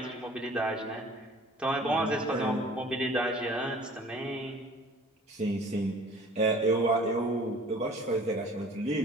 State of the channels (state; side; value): normal; both; correlation 0.49